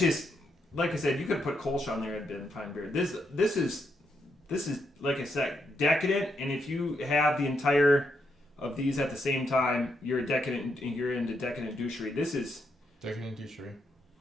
like I said, you could put Kolsch on there and been fine beer. This is like I said, decadent. And if you have the entire of these at the same time, you're into decadent douchery. This is decadent douchery.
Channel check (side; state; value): both; normal; correlation 0.79